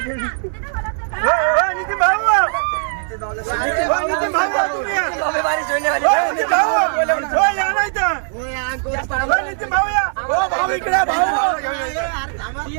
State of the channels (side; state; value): left; silent; 67 dB below the other